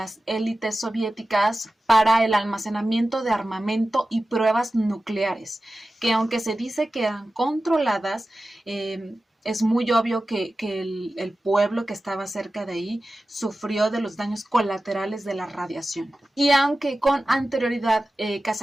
élites soviéticas para el almacenamiento de armamento y pruebas nucleares, que aunque se dice que eran controladas, es muy obvio que el pueblo que estaba cerca de ahí sufrió de los daños colaterales de la radiación. Y aunque con anterioridad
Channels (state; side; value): normal; both; correlation 0.95